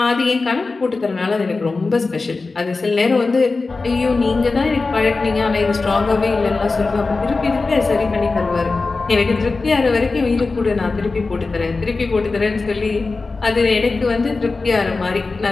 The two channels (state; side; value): quieter; right; 3.8 dB